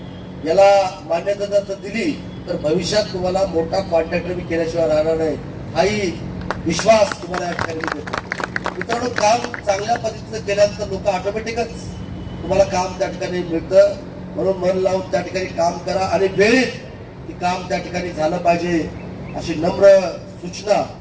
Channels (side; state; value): both; identical; correlation 1.00